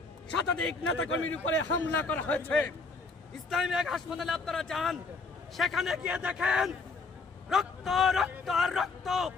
শতাধিক নেতাকর্মীর উপরে হামলা করা হয়েছে। ইসলামী এক হাসপাতালে আপনারা যান, সেখানে গিয়ে দেখেন রক্ত রক্ত আর রক্ত।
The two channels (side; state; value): right; quieter; 4.0 dB